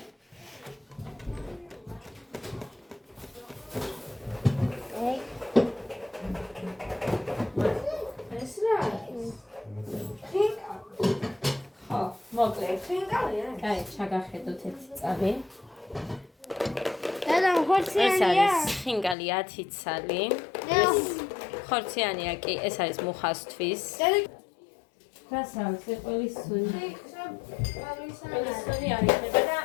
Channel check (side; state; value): right; drops out; at 19.2 s